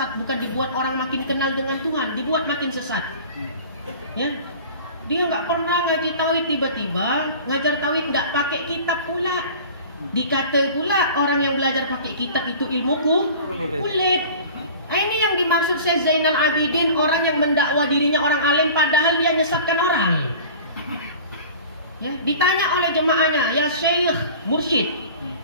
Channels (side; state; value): both; inverted; correlation -0.41